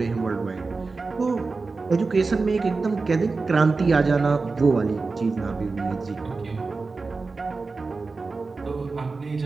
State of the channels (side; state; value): left; quieter; 4.0 dB